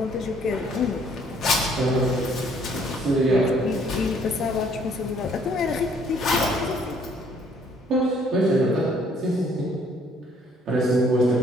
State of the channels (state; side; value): normal; both; correlation 0.62